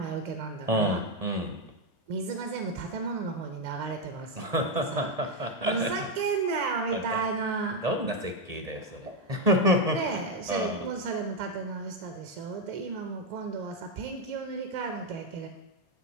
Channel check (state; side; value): late; left; 1.8 ms